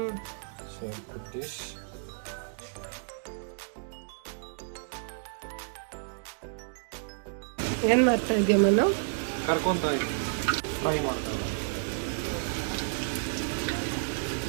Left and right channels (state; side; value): silent; left; digital silence